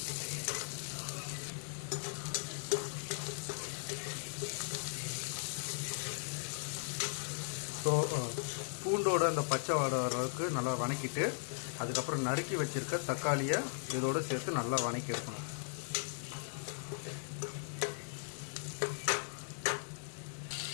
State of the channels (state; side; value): silent; right; digital silence